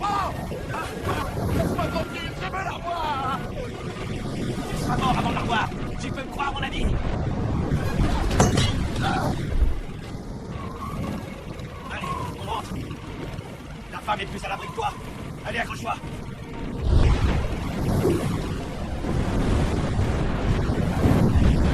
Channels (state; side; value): identical; both; correlation 1.00